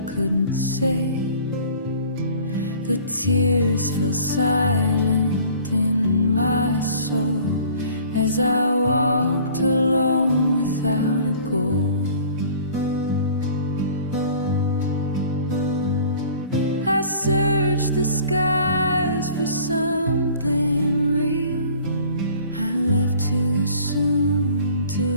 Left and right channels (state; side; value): inverted; both; correlation -0.49